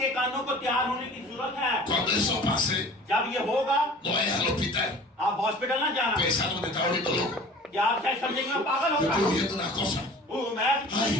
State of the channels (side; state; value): both; normal; correlation 0.45